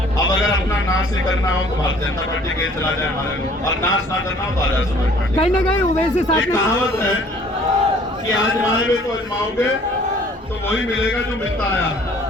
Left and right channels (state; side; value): normal; both; correlation 0.55